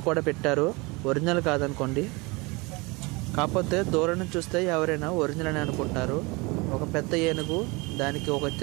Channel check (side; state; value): left; quieter; 26.0 dB